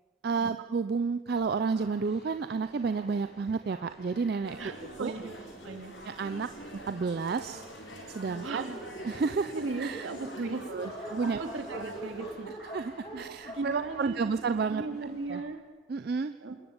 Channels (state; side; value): quieter; left; 4.1 dB